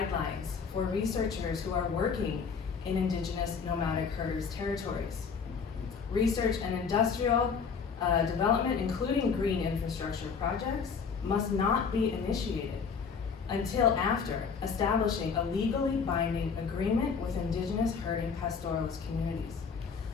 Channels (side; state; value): right; quieter; 5.8 dB